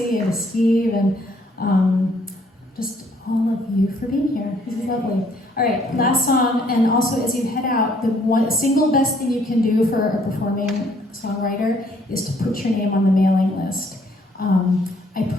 and Steve and just all of you for being here. This is lovely. All right, last song, and also as you head out, the one single best thing you can do for a performing songwriter is to put your name on the mailing list. I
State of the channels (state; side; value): normal; both; correlation 0.64